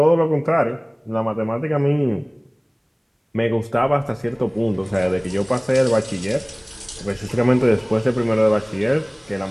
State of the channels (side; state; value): both; identical; correlation 1.00